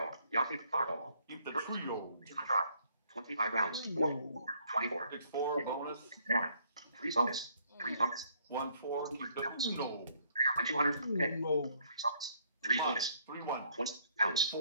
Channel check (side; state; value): both; inverted; correlation -0.65